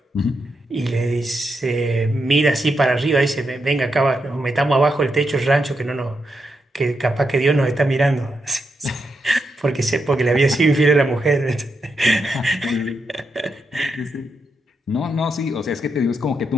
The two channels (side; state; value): both; normal; correlation 0.84